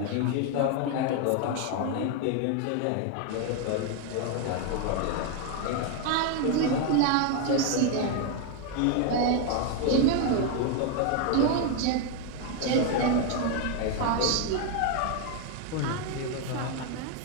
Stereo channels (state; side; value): different; both; correlation 0.01